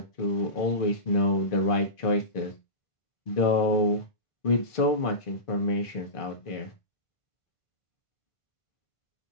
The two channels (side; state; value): right; late; 1.5 ms